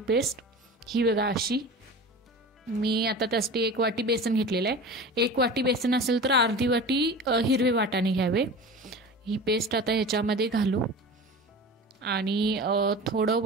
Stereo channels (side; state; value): both; normal; correlation 0.34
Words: पेस्ट. ही बघा अशी. मी आता त्यासाठी 1 वाटी बेसन घेतलेलं आहे. 1 वाटी बेसन असेल तर अर्धी वाटी हिरवे वाटाणे घ्यावे. ही पेस्ट आता ह्याच्यामध्ये घालू आणि